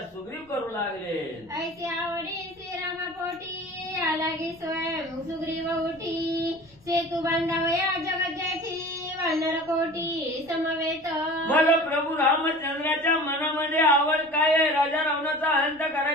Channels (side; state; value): left; noise; rumble, 29 dB below the sound